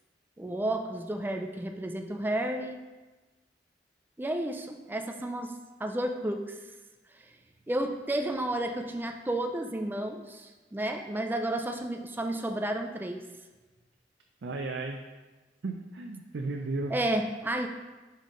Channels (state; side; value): normal; both; correlation 0.71